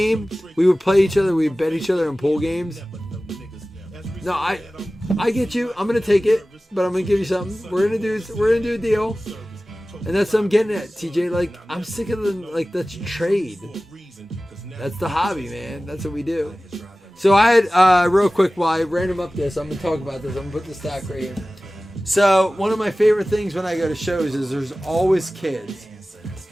we would play each other. We'd bet each other in pool games. No, I get you. I'm going to take it. But I'm going to give you something. We're going to do a deal. And that's what I'm getting at, TJ. Like, I'm sick of the, like, that's trade. That's the hobby, man. That's what we do. So I had, real quick, while I random up this, I'm going to talk about this. I'm going to put the stack right here. So one of my favorite things when I go to shows is there's always kids.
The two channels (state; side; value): normal; both; correlation 0.97